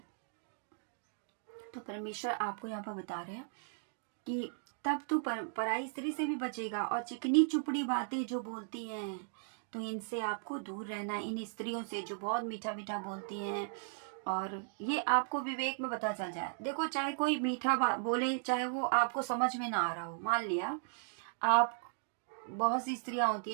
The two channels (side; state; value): left; silent; digital silence